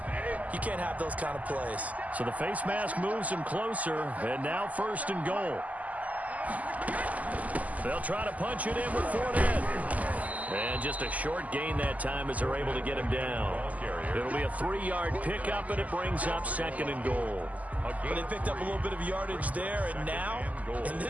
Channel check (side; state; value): left; late; 0.075 ms